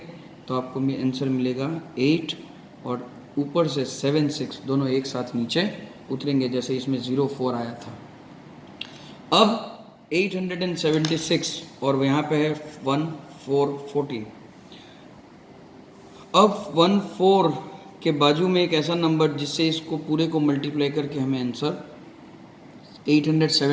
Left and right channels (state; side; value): identical; both; correlation 1.00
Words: तो आपको आंसर मिलेगा 8, और ऊपर से 7 6 दोनों एक साथ नीचे उतरेंगे, जैसे इसमें 04 आया था। अब 876 और यहाँ पे है 1414। अब 14 के बाजू में एक ऐसा नंबर जिससे इसको पूरे को मल्टीप्लाई करके हमें आंसर